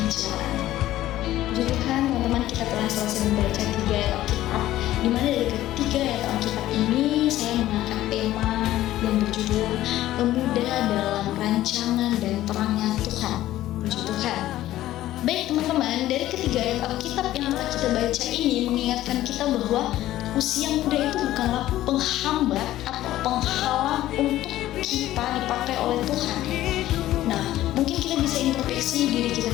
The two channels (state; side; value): quieter; right; 14.4 dB